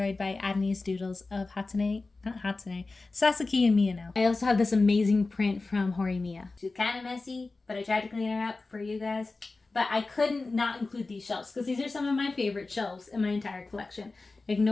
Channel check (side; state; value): right; quieter; 3.6 dB